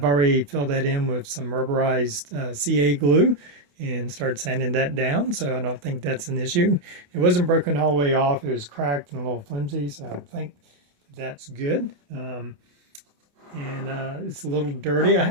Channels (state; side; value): late; left; 28 ms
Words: already filled that in with some rubberized CA glue and started sanding that down, so I don't think that's an issue. It wasn't broken all the way off. It was cracked and a little flimsy, so I think that's good. It's a little dirty. I